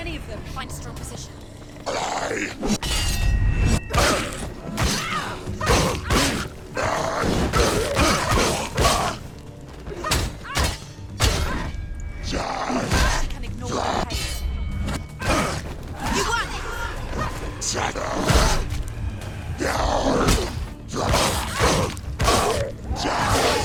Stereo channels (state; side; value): identical; both; correlation 1.00